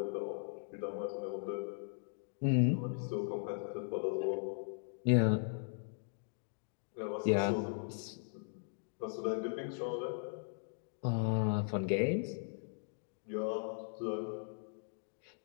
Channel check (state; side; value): silent; right; digital silence